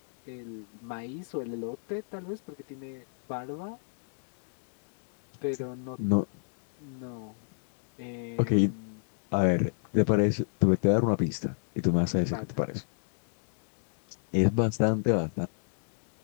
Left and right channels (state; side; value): silent; right; digital silence